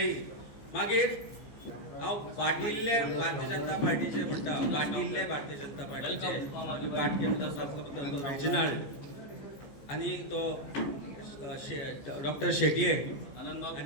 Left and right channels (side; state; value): right; late; 14 ms